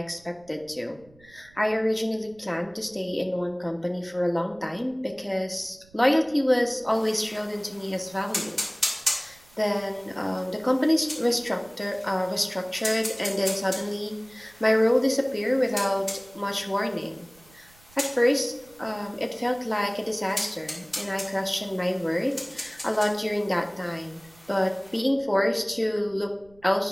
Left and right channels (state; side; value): noise; right; rumble, 27 dB below the sound